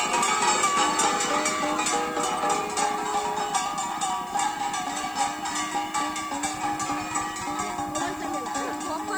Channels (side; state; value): left; noise; hiss, 22 dB below the sound